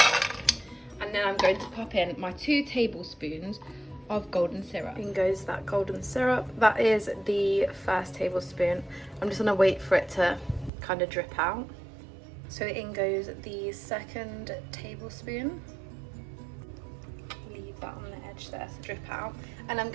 and then I'm going to pop in my 2 tablespoons of golden syrup. In goes that golden syrup. That is the first tablespoon. I'm just going to wait for it to kind of drip out. So in goes the second tablespoon. Leave that on the edge there to drip out, and I'm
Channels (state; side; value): drops out; left; at 10.7 s